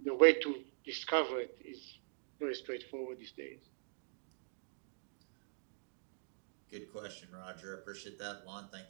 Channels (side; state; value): left; silent; digital silence